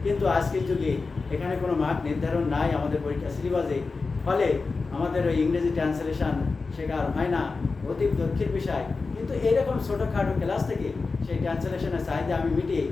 কিন্তু আজকের যুগে এখানে কোনো মার্ক নির্ধারণ নাই আমাদের পরীক্ষা সিলেবাসে। ফলে আমাদের ওই ইংরেজি ট্রান্সলেশন শেখা আর হয় না, অতি দুঃখের বিষয়। কিন্তু এইরকম ছোটোখাটো ক্লাস থেকে সেই ট্রান্সলেশনের চাহিদা আমি মিটিয়ে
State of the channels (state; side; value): quieter; right; 4.2 dB